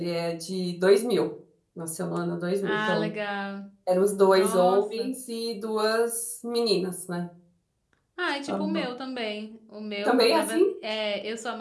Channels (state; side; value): identical; both; correlation 1.00